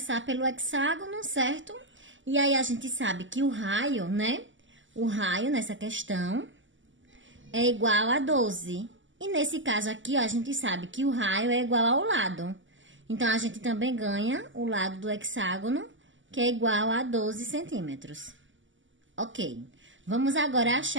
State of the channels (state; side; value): late; left; 0.55 ms